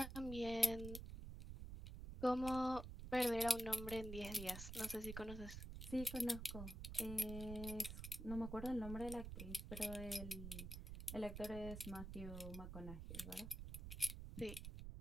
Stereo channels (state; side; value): noise; right; rumble, 8 dB below the sound